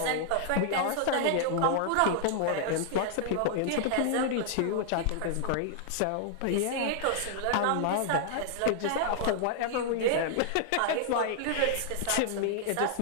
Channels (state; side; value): different; both; correlation -0.01